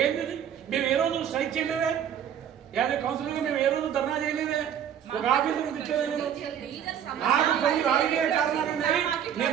ఏంది మేము ఏ రోజు స్ట్రైక్ చేయలేదే యాజ్ ఏ కౌన్సిలర్గా మేము ఏ రోజు ధర్నా చేయలేదే ఒక ఆఫీసు తిట్టేదే నాకు కొన్ని రాజకీయ కారణాలు ఉన్నాయి నేను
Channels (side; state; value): left; quieter; 9.2 dB